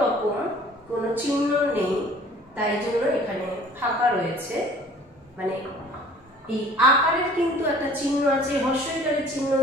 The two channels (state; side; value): normal; both; correlation 0.50